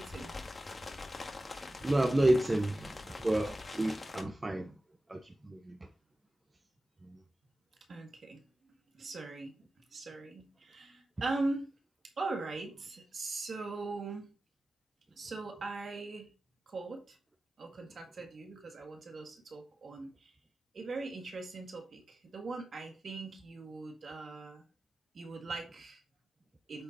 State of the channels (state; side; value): normal; both; correlation 0.95